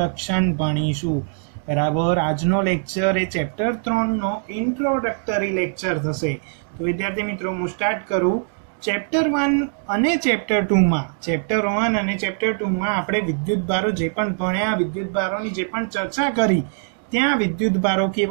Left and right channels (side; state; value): left; silent; digital silence